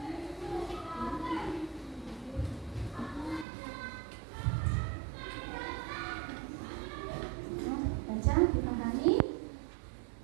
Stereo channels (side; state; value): left; drops out; at 3.5 s